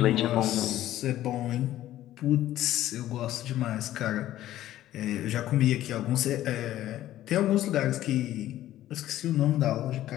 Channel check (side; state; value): right; quieter; 13.6 dB